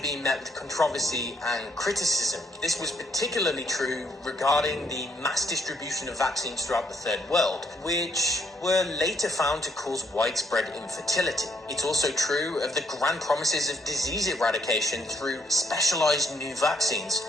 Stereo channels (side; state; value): both; normal; correlation 0.72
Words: met with controversy and criticism. This was particularly true regarding the mass distribution of vaccines throughout the Third World, which were later found to cause widespread infertility. It's also true of the grand promises of disease eradication through specialized new vaccines,